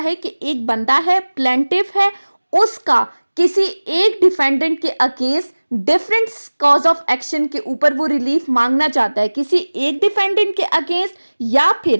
कि एक बंदा है, प्लेंटिफ है, उसका किसी एक डिफेंडेंट के against different cause of action के ऊपर वो रिलीफ मांगना चाहता है, किसी एक डिफेंडेंट के अगेंस्ट, या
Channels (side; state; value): both; inverted; correlation -1.00